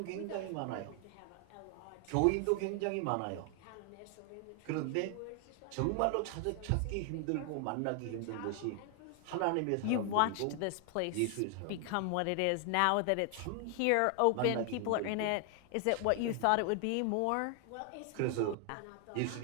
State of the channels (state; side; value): different; both; correlation 0.00